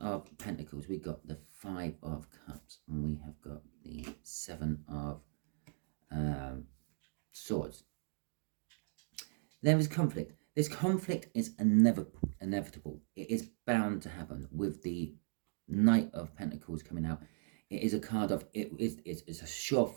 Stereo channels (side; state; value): left; silent; digital silence